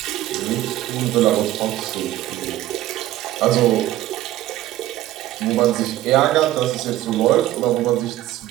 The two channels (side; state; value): left; quieter; 14.6 dB